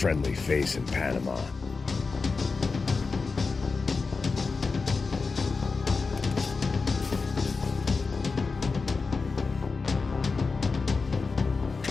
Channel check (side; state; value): right; quieter; 4.4 dB